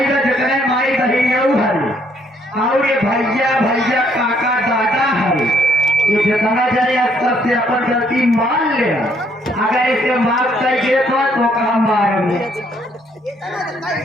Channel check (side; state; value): both; normal; correlation 0.68